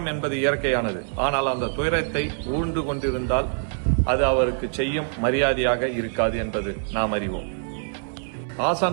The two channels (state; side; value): silent; left; 62 dB below the other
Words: என்பது இயற்கையானது. ஆனால் அந்த துயரத்தை ஊழ்ந்து கொண்டிருந்தால் அது அவருக்கு செய்யும் மரியாதையாக இருக்காது என்பது நாம் அறிவோம்.